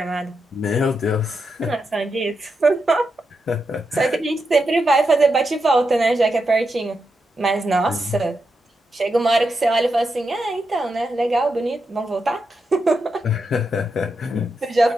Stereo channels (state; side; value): normal; both; correlation 0.86